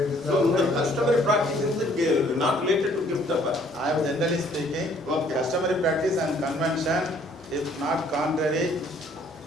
So the customary practice is not related to gift offer. I am generally speaking, customary practice and convention, if not contrary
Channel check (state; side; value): normal; both; correlation 0.61